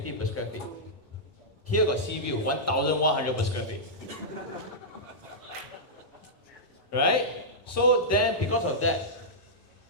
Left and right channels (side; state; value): both; normal; correlation -0.11